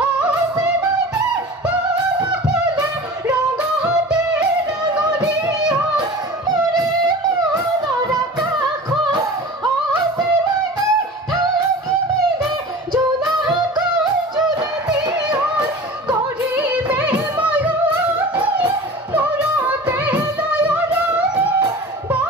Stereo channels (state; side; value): normal; both; correlation 0.38